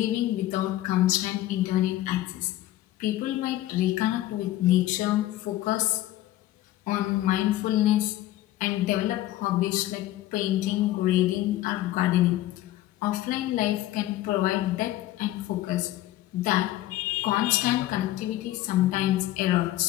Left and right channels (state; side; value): quieter; right; 15.0 dB